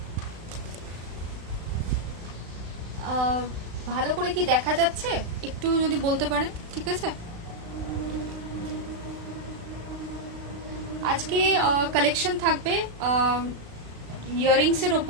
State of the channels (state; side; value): late; left; 36 ms